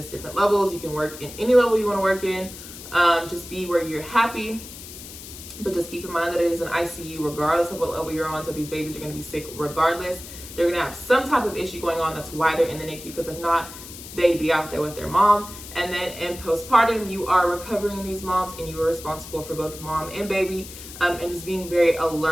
different levels. You can work in any level you want to work in. Just be where you're happy. But just keep in mind that it is an ICU regardless of what level you're on. So these babies are going to be sick regardless. They're going to have some type of issue going on. That's why they're in the NICU, because if not, they'd be out there with their mom. And then in postpartum, you are recovering these moms, and you are responsible for both mom and baby, and just being very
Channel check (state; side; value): noise; left; hiss, 14 dB below the sound